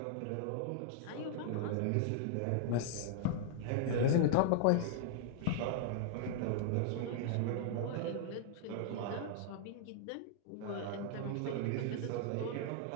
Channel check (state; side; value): different; both; correlation -0.01